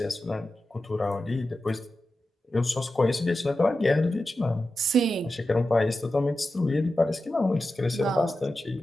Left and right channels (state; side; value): normal; both; correlation 0.92